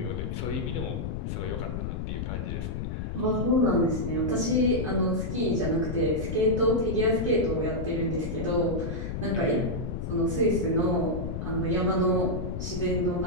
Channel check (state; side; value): noise; left; rumble, 4 dB below the sound